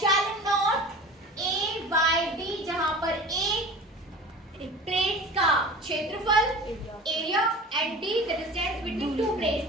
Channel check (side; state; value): both; normal; correlation 0.38